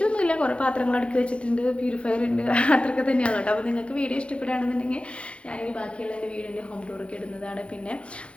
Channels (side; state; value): right; late; 0.059 ms